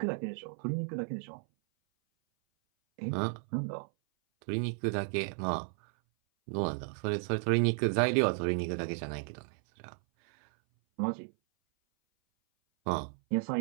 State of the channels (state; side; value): silent; left; 56 dB below the other